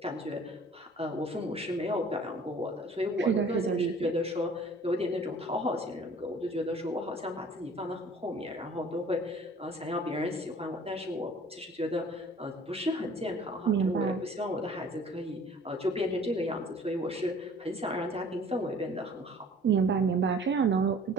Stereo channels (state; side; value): normal; both; correlation 0.50